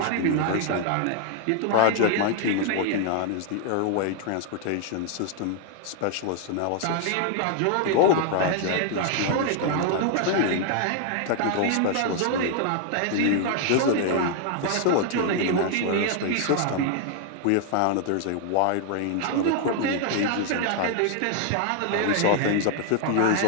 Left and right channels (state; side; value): different; both; correlation 0.00